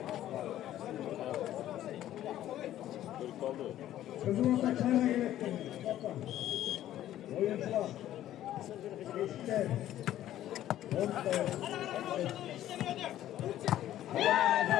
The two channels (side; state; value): right; quieter; 12.8 dB